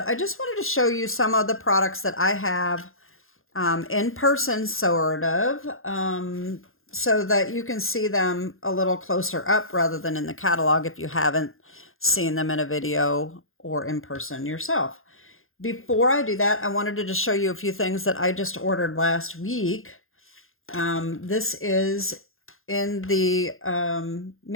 I just wanted to show you some of the products that I have in person, sort of, so that you can see them a little closer up rather than in the catalog if you haven't seen them in a video or in person yourself. Before I do that, I wanted to just show you a few things that I just ordered last week. This is in the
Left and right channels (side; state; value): right; late; 0.60 ms